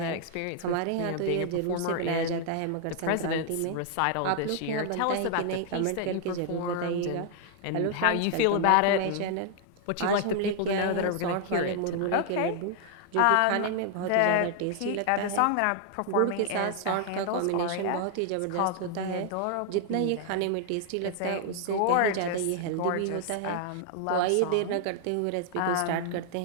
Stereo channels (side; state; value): both; different; correlation 0.00